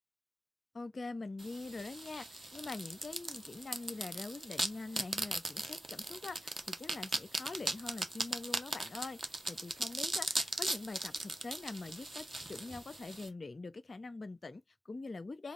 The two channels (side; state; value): both; normal; correlation 0.91